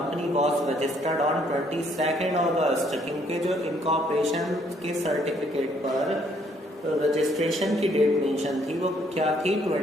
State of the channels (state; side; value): normal; both; correlation 0.67